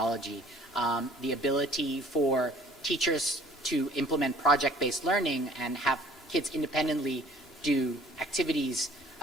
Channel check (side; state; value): both; normal; correlation 0.53